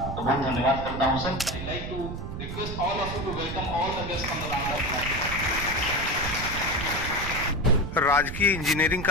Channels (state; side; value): noise; right; rumble, 7 dB below the sound